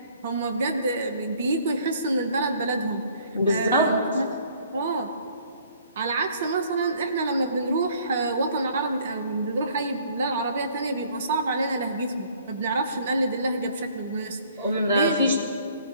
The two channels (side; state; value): both; inverted; correlation -0.58